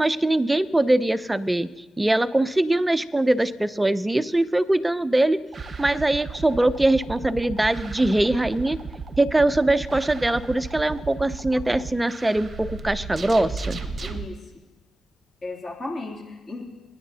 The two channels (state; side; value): normal; both; correlation 0.97